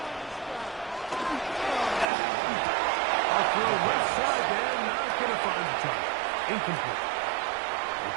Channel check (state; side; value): drops out; left; at 2.1 s